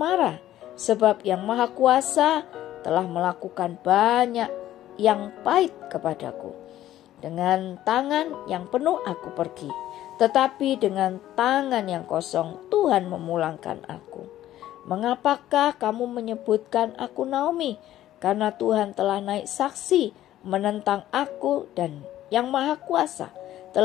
sebab Yang Maha Kuasa telah melakukan banyak yang pahit kepadaku. Dengan tangan yang penuh aku pergi, tetapi dengan tangan yang kosong Tuhan memulangkan aku. Mengapakah kamu menyebutkan aku Naomi? Karena Tuhan telah naik saksi menentang aku dan Yang Maha Kuasa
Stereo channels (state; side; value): quieter; right; 13.3 dB